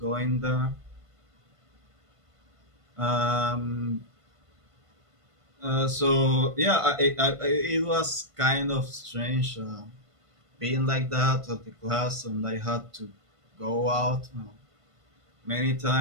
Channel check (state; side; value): late; left; 1.5 ms